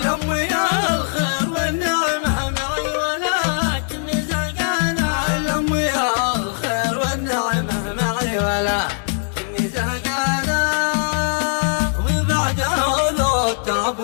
يا الخير والنعمه معي ولكني زهقانه الهم يا الخير والنعمه معي ولكني زهقانه وبعدها ذو التعب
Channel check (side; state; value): right; silent; digital silence